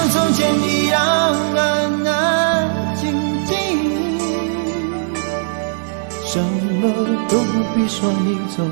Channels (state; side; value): silent; left; digital silence